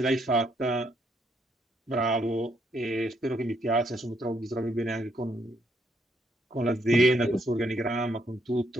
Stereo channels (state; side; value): normal; both; correlation 0.73